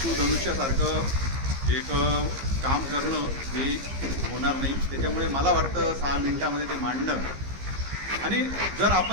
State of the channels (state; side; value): late; left; 15 ms